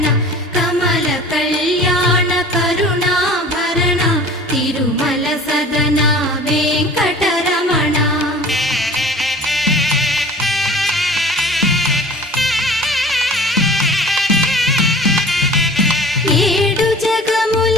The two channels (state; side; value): normal; both; correlation 0.44